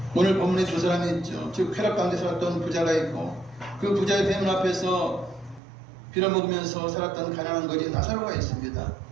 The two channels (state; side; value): drops out; left; at 5.6 s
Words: 오늘 본문에 두 사람이 있죠. 즉 쾌락 가운데 살았던 부자가 있고 그 부자의 뱀 앞에서 빌어먹으면서 살았던 가난한 거지 나사로가 있습니다.